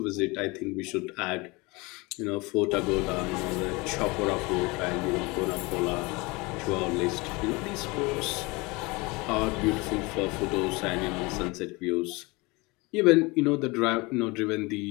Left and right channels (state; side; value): quieter; right; 25.1 dB